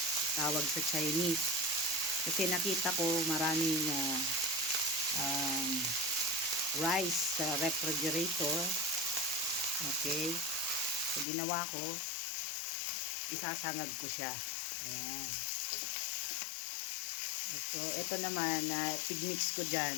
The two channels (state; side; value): drops out; right; at 11.2 s